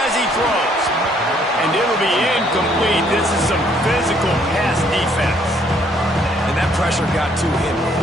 as he throws. And it'll be incomplete. This is some physical pass defense. And that pressure got to him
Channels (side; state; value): both; normal; correlation 0.65